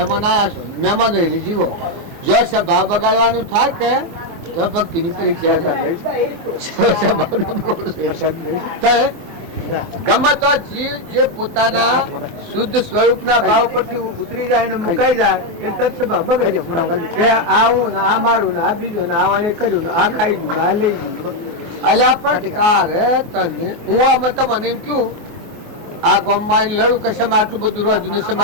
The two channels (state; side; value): late; left; 24 ms